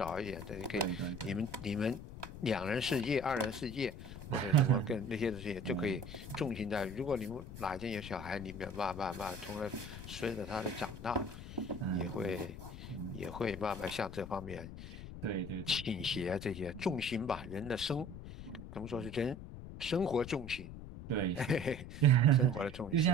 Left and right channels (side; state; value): left; noise; rumble, 11 dB below the sound